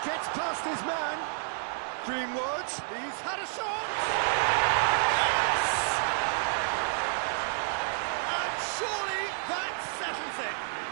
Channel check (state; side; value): silent; left; 58 dB below the other